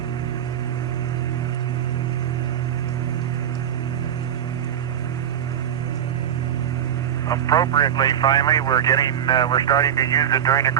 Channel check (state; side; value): quieter; left; 9.6 dB